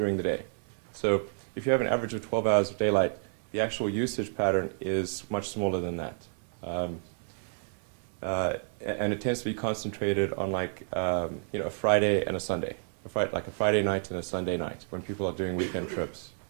the day. So if you have an average of 12 hours of daylight, the actual usage pattern is much smaller than that. And it tends to be concentrated on a Friday and a Sunday, like a Friday night and a Sunday night when people are doing weekend trips.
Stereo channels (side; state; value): left; silent; 58 dB below the other